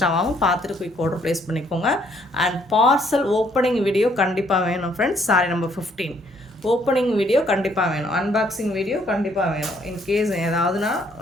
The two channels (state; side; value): normal; both; correlation 0.67